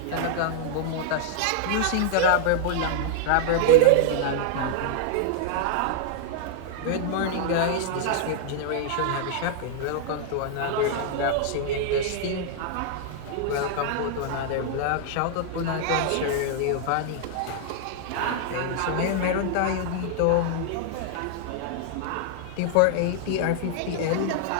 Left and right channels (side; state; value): both; different; correlation -0.01